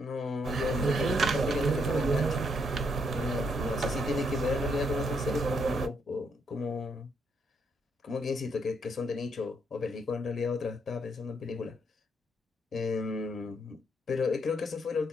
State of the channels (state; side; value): normal; both; correlation 0.74